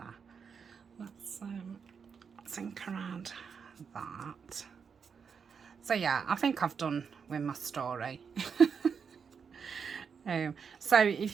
Let's think around that. So yeah, I think I've done with my story. So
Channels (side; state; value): left; quieter; 6.3 dB